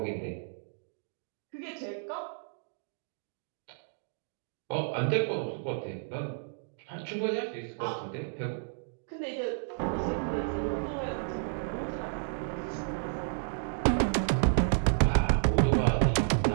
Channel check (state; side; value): silent; left; digital silence